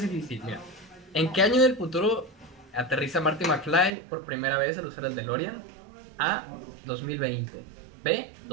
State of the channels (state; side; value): drops out; left; at 3.9 s